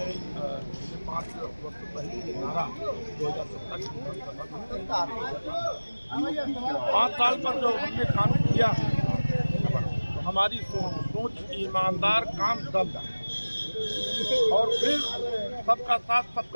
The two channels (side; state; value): both; inverted; correlation -1.00